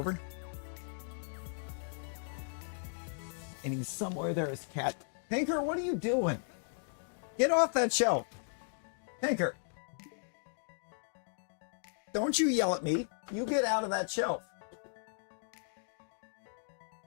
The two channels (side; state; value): right; silent; digital silence